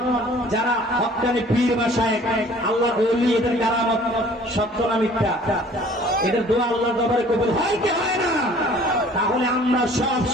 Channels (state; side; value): normal; both; correlation 0.52